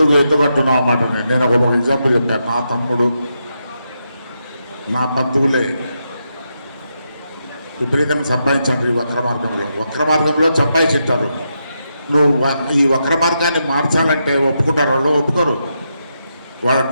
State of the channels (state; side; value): inverted; both; correlation -0.84